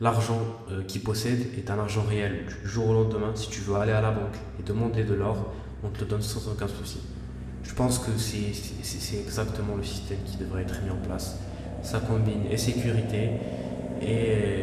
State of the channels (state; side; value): identical; both; correlation 1.00